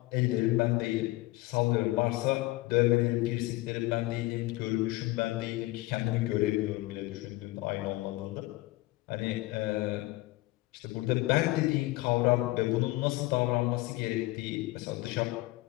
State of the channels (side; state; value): right; quieter; 19.6 dB